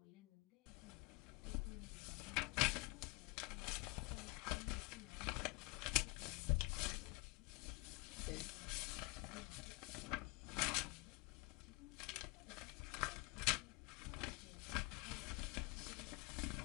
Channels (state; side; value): quieter; right; 26.6 dB